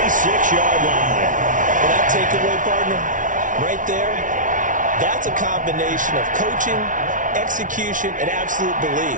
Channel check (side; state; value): left; late; 0.38 ms